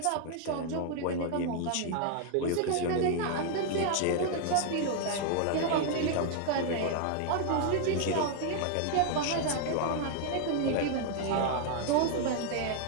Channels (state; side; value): different; both; correlation 0.00